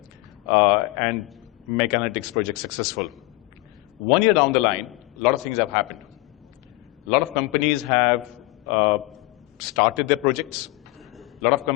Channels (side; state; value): right; quieter; 21.4 dB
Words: and make analytics projects successful. 1 year down the line, a lot of things have happened. A lot of companies have started their projects. A lot of